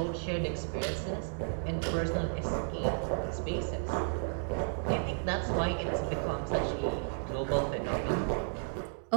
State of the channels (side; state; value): left; silent; digital silence